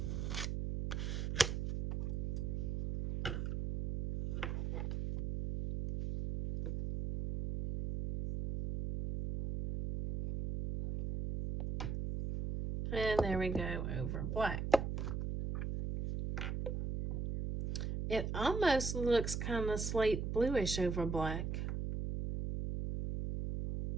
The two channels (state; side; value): noise; right; hum, 2 dB below the sound